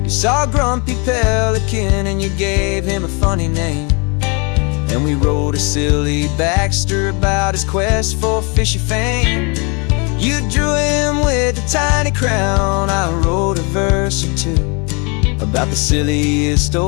You saw a grumpy pelican and you gave him a funny name, and we wrote a silly Baxter about his quest for fishy fame. You drew him with a tiny crown, I wrote a verse or two about the silliest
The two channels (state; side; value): quieter; right; 32.7 dB